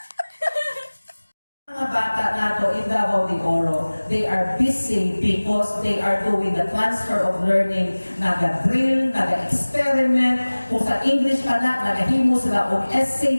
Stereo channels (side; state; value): both; inverted; correlation -1.00